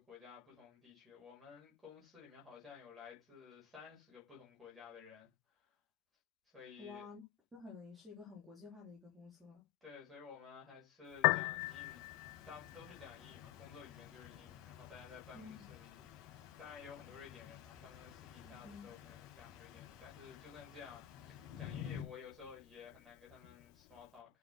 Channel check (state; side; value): quieter; right; 13.7 dB